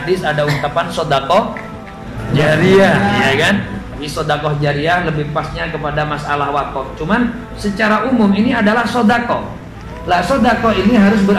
ada ungkapan sodakoh jariyah, ya kan? Tapi sodakoh jariyah lebih pasnya kepada masalah wakaf. Cuman secara umum ini adalah sodakoh. Lah sodakoh ini harus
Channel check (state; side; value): identical; both; correlation 1.00